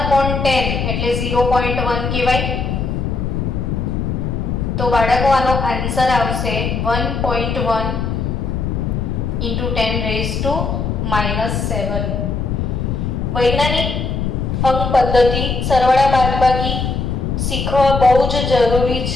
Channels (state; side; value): noise; left; rumble, 1 dB below the sound